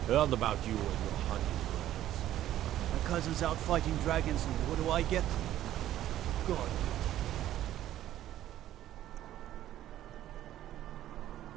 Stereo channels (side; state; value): left; quieter; 12.9 dB